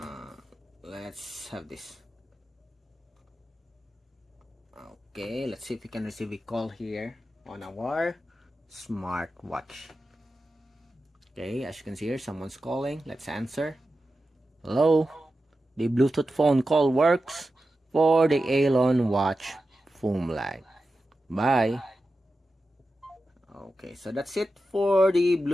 Let's have this. Okay, let's see if we can receive a call here on our smartwatch. Okay, as you can see here, someone's calling. Let's answer. Hello, the Bluetooth phone call works for the AOLON Watch FOOM Lite. Bye. Okay, so that's it for the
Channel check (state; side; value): normal; both; correlation 0.92